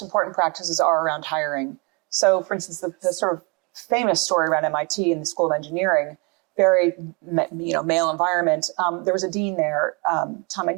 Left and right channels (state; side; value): quieter; left; 31.5 dB